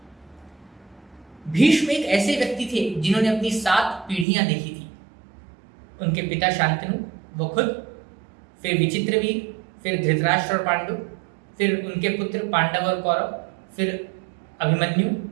भीष्म एक ऐसे व्यक्ति थे जिन्होंने अपनी 7 पीढ़ियां देखी थी। उनके पिता शांतनु, वो खुद, फिर विचित्रवीर, फिर धृतराष्ट्र और पांडु, फिर उनके पुत्र पांडव और कौरव, फिर अभिमन्यु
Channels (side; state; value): left; drops out; at 4.2 s